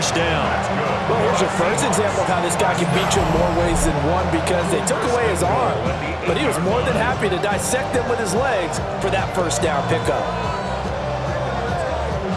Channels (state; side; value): identical; both; correlation 1.00